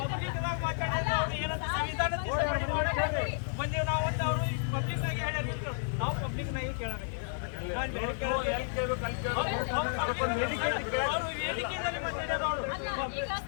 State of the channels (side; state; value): right; silent; digital silence